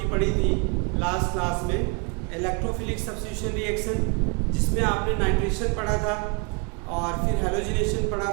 पढ़ी थी लास्ट क्लास में। इलेक्ट्रोफिलिक सब्स्टिट्यूशन रिएक्शन, जिसमें आपने नाइट्रेशन पढ़ा था और फिर हैलोजिनेशन पढ़ा,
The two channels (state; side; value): quieter; left; 33.3 dB